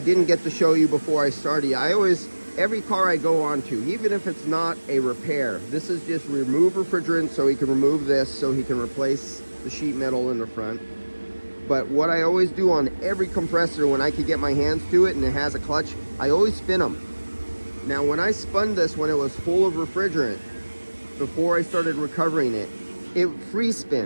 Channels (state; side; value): inverted; both; correlation -1.00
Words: get to show you before I started, every car I go on to, even if it's not a repair, this is just remove refrigerant, so he can remove this, so he can replace the sheet metal in the front. But what I always do on every compressor when I can get my hands to it and it has a clutch, I always spin them. Now, when I spun this when it was full of refrigerant, before I started recovering it, it free